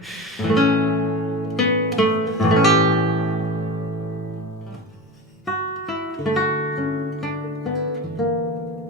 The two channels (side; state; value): both; normal; correlation 0.29